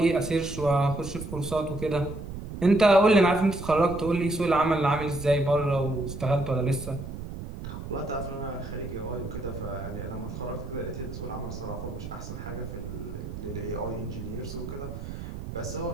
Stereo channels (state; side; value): noise; right; rumble, 9 dB below the sound